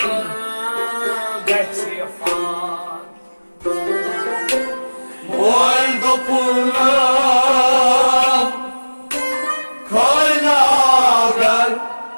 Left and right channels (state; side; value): inverted; both; correlation -1.00